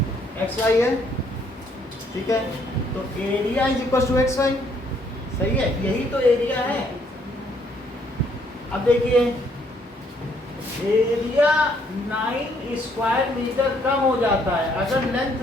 xy है, ठीक है, तो area is equal to xy, सही है, यही तो एरिया है। अब देखिए एरिया 9 स्क्वायर मीटर कम हो जाता है अगर लेंथ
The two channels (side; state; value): both; normal; correlation 0.68